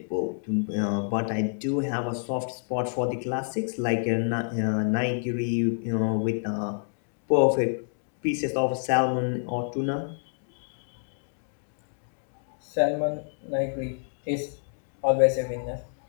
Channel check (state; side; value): silent; right; digital silence